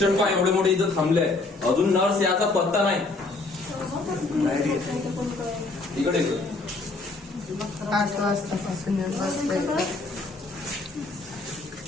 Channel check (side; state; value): right; quieter; 3.4 dB